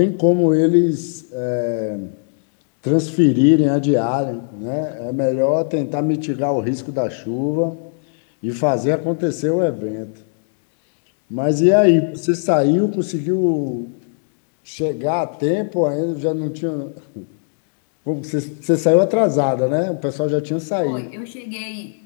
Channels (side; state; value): right; silent; digital silence